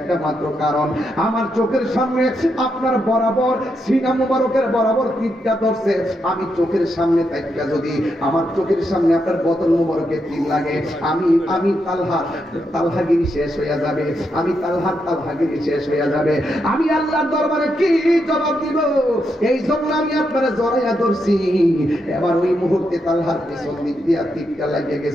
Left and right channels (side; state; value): both; normal; correlation 0.82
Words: মাত্র কারণ, আমার চোখের সামনে আপনার বরাবর সিনা মুবারকের বরাবর তীরটা ধরছে। আমি চোখের সামনে তাইকা যদি আমার চোখের সামনে আপনার বদন মুবারকে তীর লাগে, আমি তালহাগিরি শেষ হইয়া যাবে, আমি তালহাগিরি শেষ হইয়া যাবে। আমি আল্লাহর দরবারে কি জবাব দিব? এই জন্য আমি আপনারা জড়াইয়া ধরছি। এবার ওই মুহূর্তে তালহার পেছন দিক দিয়া তীরটা লাগিয়ে